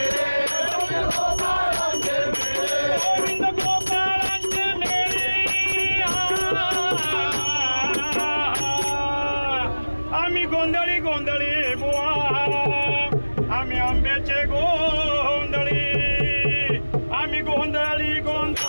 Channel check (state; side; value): inverted; both; correlation -1.00